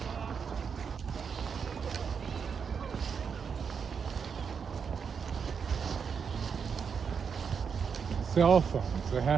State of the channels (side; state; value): left; quieter; 6.4 dB